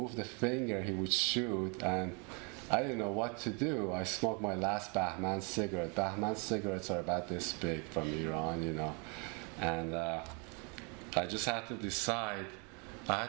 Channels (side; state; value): left; quieter; 33.9 dB